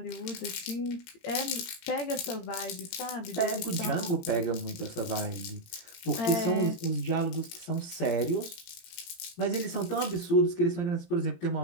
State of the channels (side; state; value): right; late; 18 ms